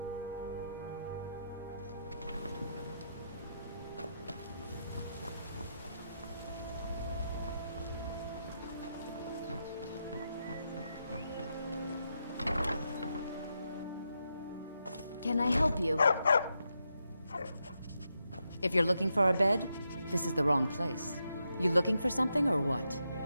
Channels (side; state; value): both; inverted; correlation -0.84